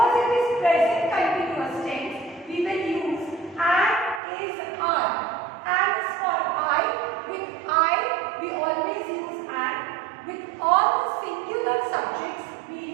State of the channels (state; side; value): drops out; left; at 4.2 s